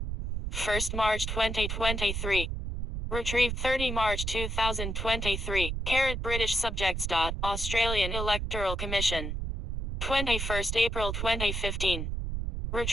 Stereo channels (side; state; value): right; noise; rumble, 3 dB below the sound